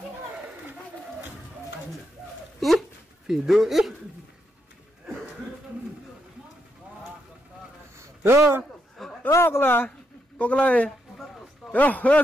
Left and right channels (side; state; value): both; normal; correlation 0.80